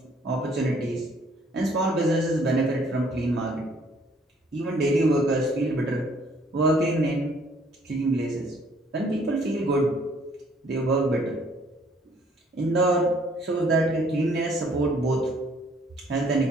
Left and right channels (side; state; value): both; normal; correlation 0.62